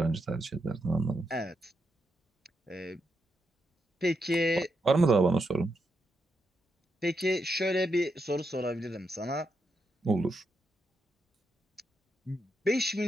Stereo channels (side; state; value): both; normal; correlation 0.82